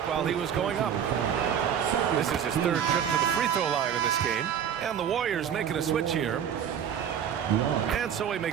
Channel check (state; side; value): quieter; left; 8.7 dB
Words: while he was going up. This is his 3rd trip to the free throw line in this game. And the Warriors making a switch here. And so he